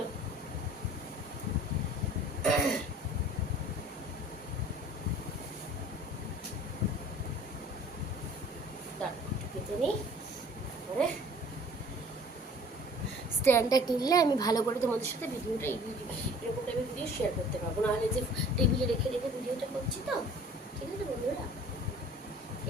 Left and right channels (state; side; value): normal; both; correlation 0.49